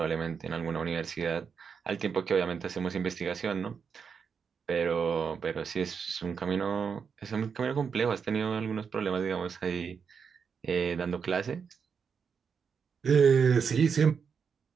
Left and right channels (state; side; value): quieter; left; 6.3 dB